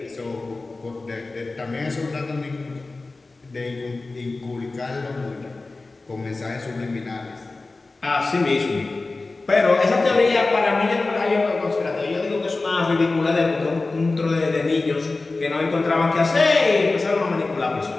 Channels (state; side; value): quieter; right; 3.5 dB